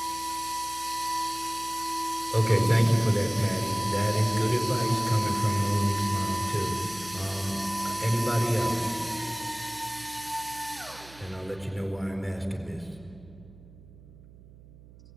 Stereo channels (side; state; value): right; noise; hum, 21 dB below the sound